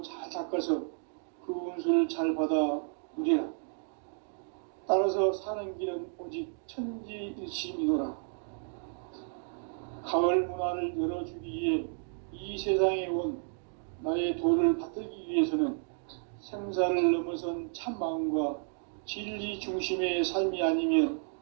잘 닦아서 그 운수를 잘 받아 누리라. 따라서 사는 길은 오직 천지일심이노라. 가을 문화를 열어주기 위해 이 세상에 온 나의 도를 받들기 위해서는 생사를 넘어선 참 마음과 진리 중심의 삶이 아니면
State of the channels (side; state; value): left; silent; 56 dB below the other